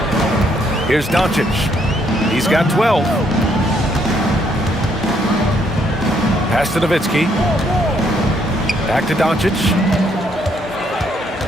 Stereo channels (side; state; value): both; normal; correlation 0.71